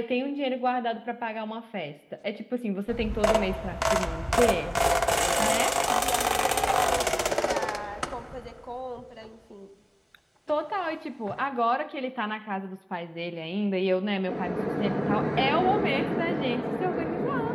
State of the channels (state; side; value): identical; both; correlation 1.00